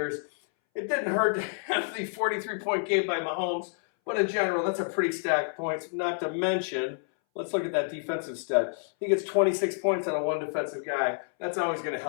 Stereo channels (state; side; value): silent; right; 59 dB below the other